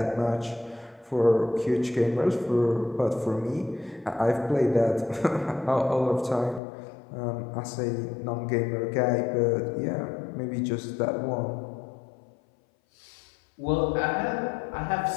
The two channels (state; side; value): drops out; right; at 6.6 s